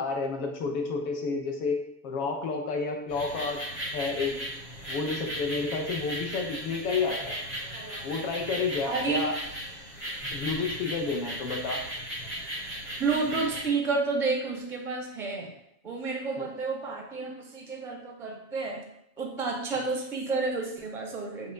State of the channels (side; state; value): right; late; 7.2 ms